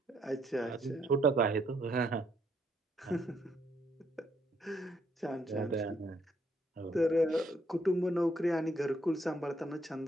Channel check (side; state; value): both; normal; correlation 0.71